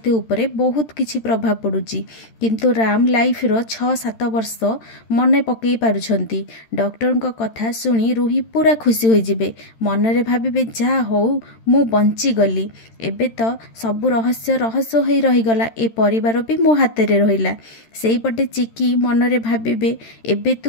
उपरे बहुत किछि प्रभाव पड़ुछि किंतु राम लाइफ रो 6-7 वर्ष मन पकई पारुछंती। डॉक्टर को कथा सुनी रूही पूरा खुशी हो जिबे मनरे भाबिबे जा हो मु बंची गली एबे तो सबु रहस्य रहस्य होई रहीगला ए परिवार भी मो हाथ रे रहिला। सेई पटे चिकी मनरे भाबिबे एबे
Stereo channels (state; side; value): late; right; 13 ms